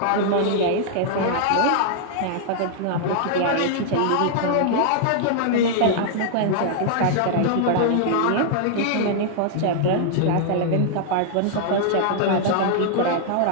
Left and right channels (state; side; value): different; both; correlation -0.01